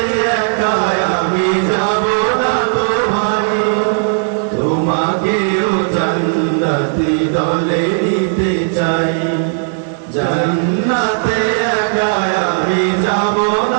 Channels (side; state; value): left; silent; digital silence